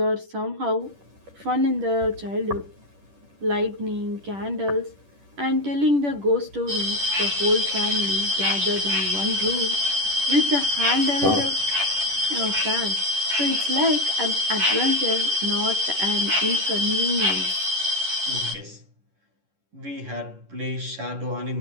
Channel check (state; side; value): late; left; 10 ms